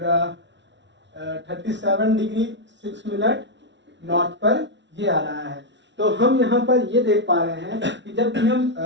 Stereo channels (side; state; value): left; late; 0.52 ms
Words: 37 डिग्री 6 मिनट नॉर्थ पर ये आ रहा है। तो हम यहाँ पर ये देख पा रहे हैं कि जब भी हम